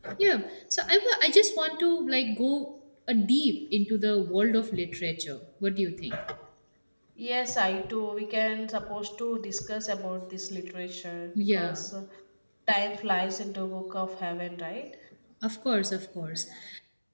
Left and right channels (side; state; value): both; inverted; correlation -1.00